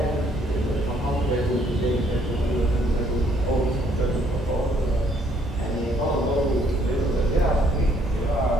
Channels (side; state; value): both; normal; correlation 0.66